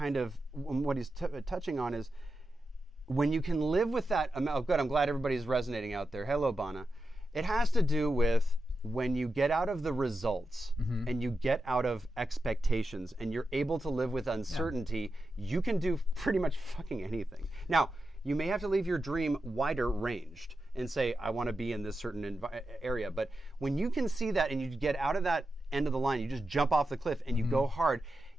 of, what he's touching on is, when you can live with that amount. Oh, good, I'm glad everybody's resonating out there. Hello, Bana. It has to do with when you get out of the results and you get out of expectations and you're able to live with uncertainty, you can do pretty much fucking anything. Now, you may have to leave your dream wider ranged and say, I want to be in this certain area. But when you can see that and you get out of that end of the line, you just jump off the cliff and you go hard.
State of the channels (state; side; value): normal; both; correlation 0.89